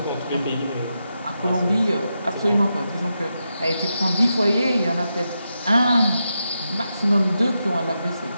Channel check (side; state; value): both; inverted; correlation -0.87